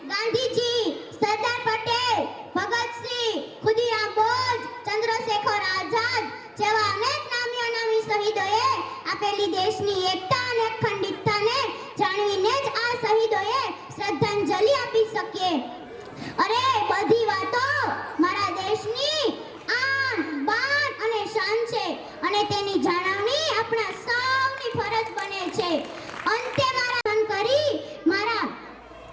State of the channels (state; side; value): identical; both; correlation 1.00